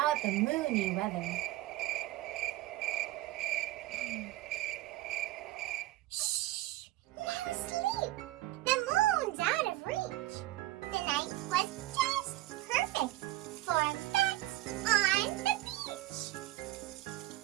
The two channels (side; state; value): left; quieter; 16.7 dB